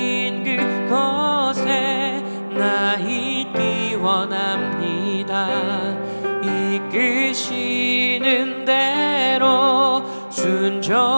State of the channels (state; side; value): inverted; both; correlation -1.00